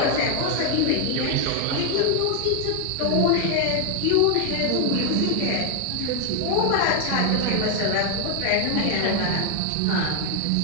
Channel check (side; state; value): both; different; correlation 0.00